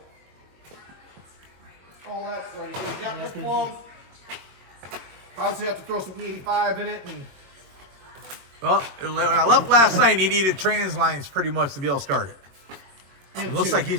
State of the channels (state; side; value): late; left; 22 ms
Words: all that's ready. So we got this plug. Obviously have to throw some E85 in it. And Well, when I left last night, he needed trans lines pretty much to be able to start it. It looks like